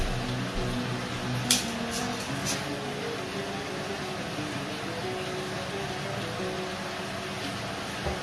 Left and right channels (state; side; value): identical; both; correlation 1.00